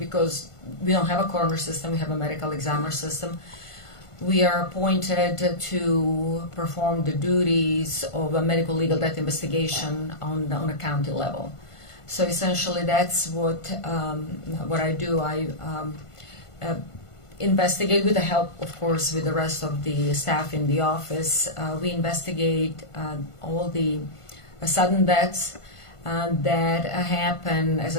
we don't have a coroner system, we have a medical examiner system. We are appointed to perform the duties of a medical legal death investigation on a county level. So essentially, that's what I do. I investigate with the help, of course, with the rest of the staff in the office. We investigate all the sudden deaths that happen, as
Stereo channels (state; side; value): late; right; 1.5 ms